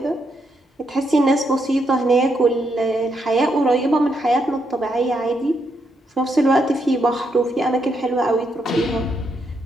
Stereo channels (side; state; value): both; normal; correlation 0.79